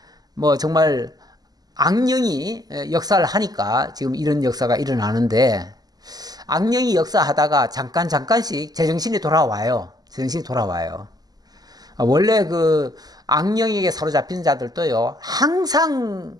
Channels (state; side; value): late; left; 0.19 ms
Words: 뭐 정말 악령이 역사를 하니까 지금 이런 역사가 일어나는데 악령이 역사하다가 잠깐씩 제정신이 돌아와요. 제정신이 돌아와요. 원래 그 악령에게 사로잡힌 자들도요 항상